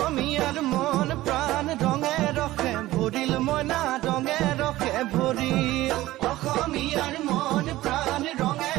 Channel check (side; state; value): left; quieter; 16.6 dB